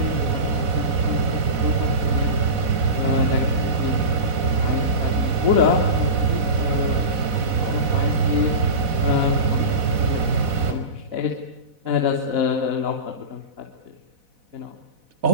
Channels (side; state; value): left; late; 4.1 ms